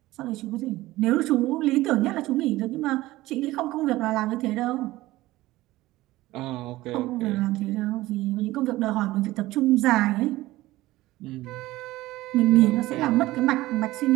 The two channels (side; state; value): left; quieter; 17.6 dB